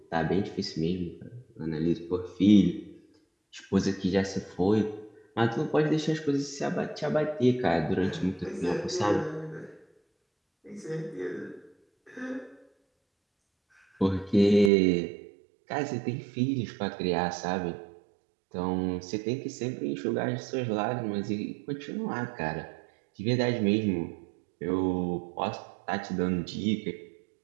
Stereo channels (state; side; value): drops out; left; at 14.7 s